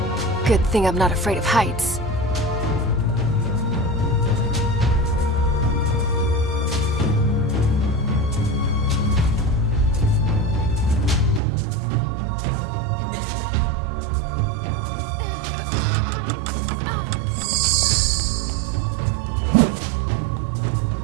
Good thing I'm not afraid of heights.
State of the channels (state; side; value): drops out; left; at 11.4 s